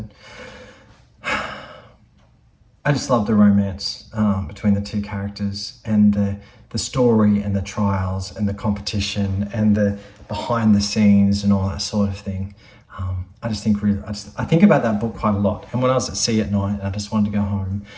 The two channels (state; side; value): identical; both; correlation 1.00